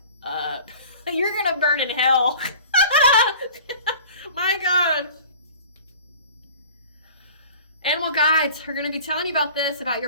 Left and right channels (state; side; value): inverted; both; correlation -0.44